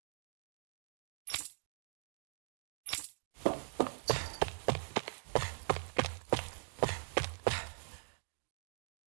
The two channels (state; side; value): silent; left; digital silence